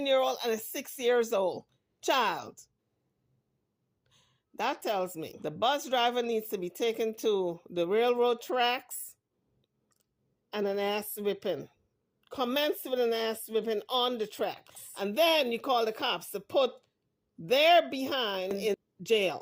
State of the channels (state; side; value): identical; both; correlation 1.00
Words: and a 6-year-old child? That tells me the bus driver needs to be taken to the railroad tracks and an ass whipping. Commence with an ass whipping on the tracks. And then you call the cops to put their behind in